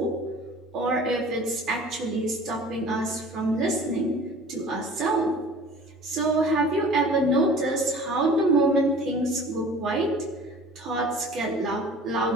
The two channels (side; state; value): both; normal; correlation 0.45